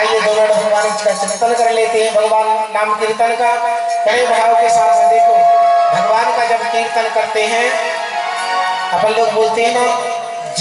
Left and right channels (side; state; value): both; identical; correlation 1.00